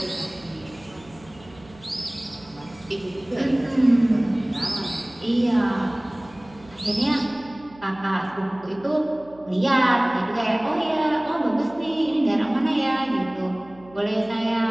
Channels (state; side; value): noise; right; hum, 24 dB below the sound